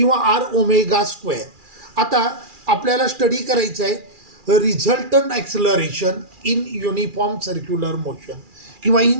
आर ओमेगा स्क्वेअर. आता आपल्याला स्टडी करायचं आहे resultant acceleration in uniform circular motion किंवा इन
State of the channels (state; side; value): late; left; 2.4 ms